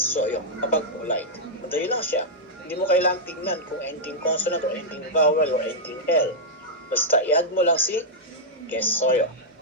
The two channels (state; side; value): normal; both; correlation -0.08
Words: yung kapag polite. Madali lang siya. Hindi mo kailangang tingnan kung ending consonant or ending vowel or ending L. Basta i-add mo lang si kesoyo.